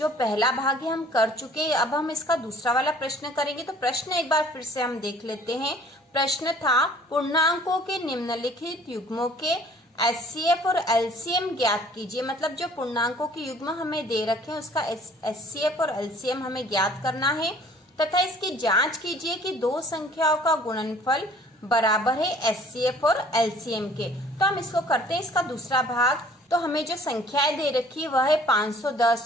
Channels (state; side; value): normal; both; correlation 0.54